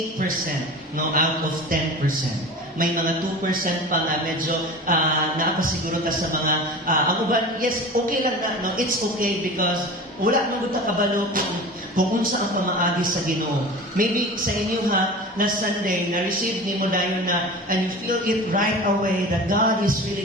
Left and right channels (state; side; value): normal; both; correlation 0.35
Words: 8%, no, out of 10%. May mga 2% pa nga medyo naapasiguro ka sa mga ang uban, yes, okay lang na, no? It's okay because wala nang buta kabalo kung unsa ang pamaagi sa Ginoo. Maybe sa inyo last Sunday, na-receive ni mo dayon na, and you feel it right away that God is